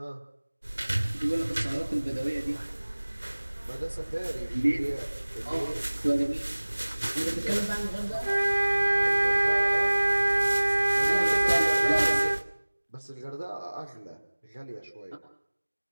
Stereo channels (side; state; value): both; inverted; correlation -1.00